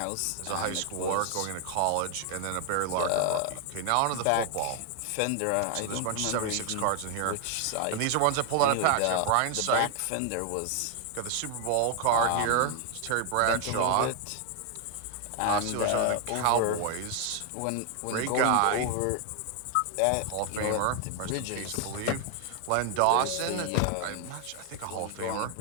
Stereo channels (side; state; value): both; different; correlation 0.00